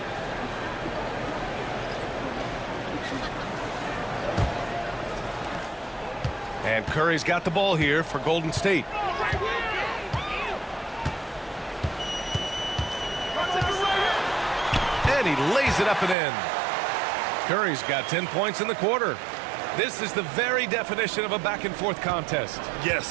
And Curry's got the ball here for Golden State. And he lays it up and in. Curry's got 10 points in the quarter. This is the very definition of a back-and-forth contest.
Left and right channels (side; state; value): left; drops out; at 16.2 s